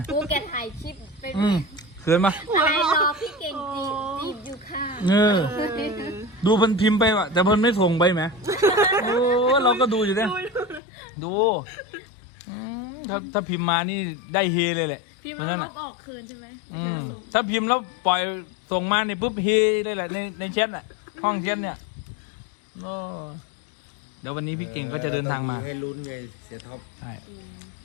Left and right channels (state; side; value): drops out; right; at 10.8 s